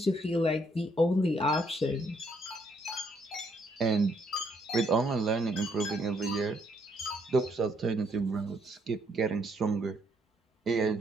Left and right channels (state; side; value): normal; both; correlation 0.71